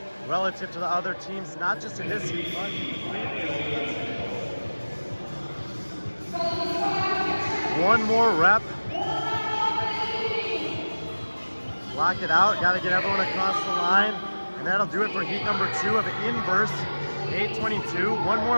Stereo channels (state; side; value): inverted; both; correlation -1.00